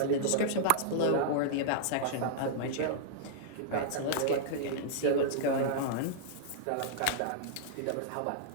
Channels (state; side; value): different; both; correlation -0.02